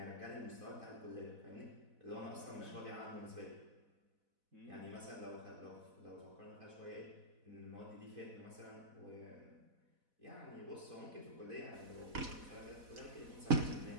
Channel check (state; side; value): late; left; 4.1 ms